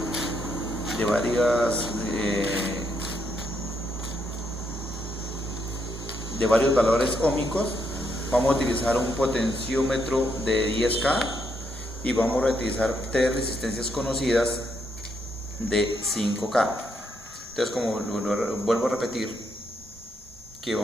de varios valores óhmicos. Vamos a utilizar un potenciómetro de 10K y vamos a utilizar tres resistencias conocidas de 5K. Entonces, como vuelvo a repetir, ¿qué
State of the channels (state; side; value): normal; both; correlation 0.77